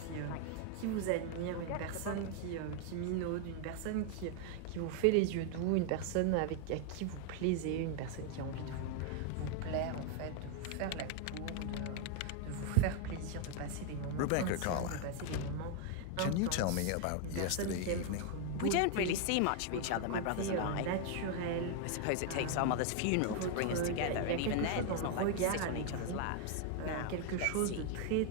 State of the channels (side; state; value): both; different; correlation 0.00